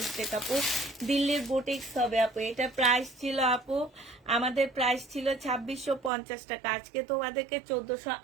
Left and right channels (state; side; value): drops out; left; at 6.1 s